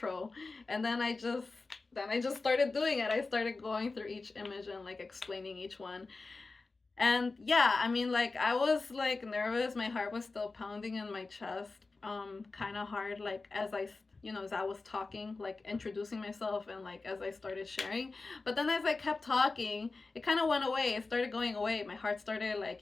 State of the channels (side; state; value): right; quieter; 3.8 dB